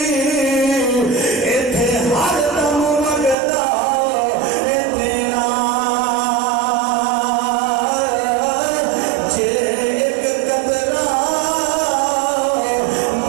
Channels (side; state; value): left; drops out; at 3.4 s